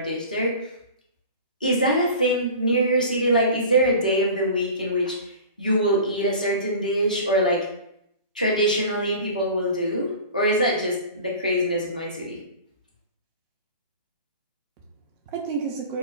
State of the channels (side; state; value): both; inverted; correlation -0.38